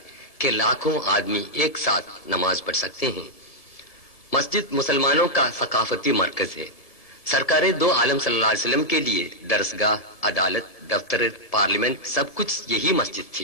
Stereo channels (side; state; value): right; late; 1.7 ms